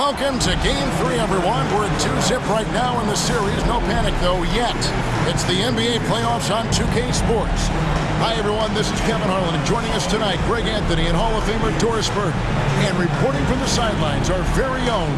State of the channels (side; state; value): both; identical; correlation 1.00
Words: Welcome to Game 3, everyone. We're at 2-zip right now in the series. No panic, though, yet. It's the NBA playoffs on 2K Sports. Hi, everyone. This is Kevin Harlan, and joining us tonight, Greg Anthony and Hall of Famer Doris Burke. And reporting from the sidelines, our very